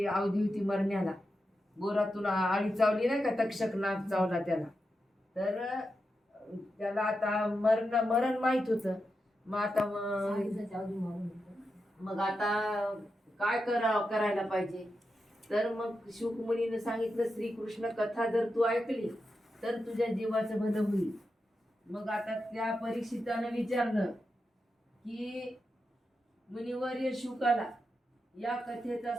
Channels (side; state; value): both; normal; correlation 0.88